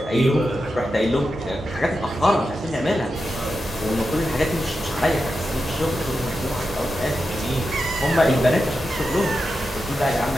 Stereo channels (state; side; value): normal; both; correlation 0.89